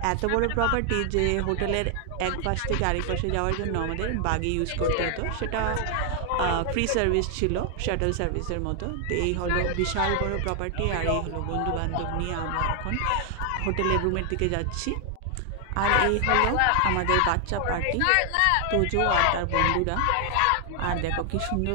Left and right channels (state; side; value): different; both; correlation 0.00